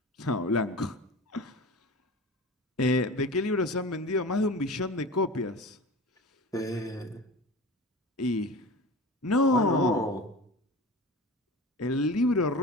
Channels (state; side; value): normal; both; correlation 0.33